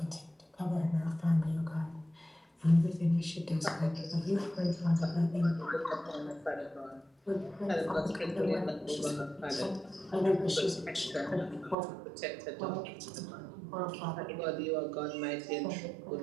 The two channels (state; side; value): drops out; left; at 11.8 s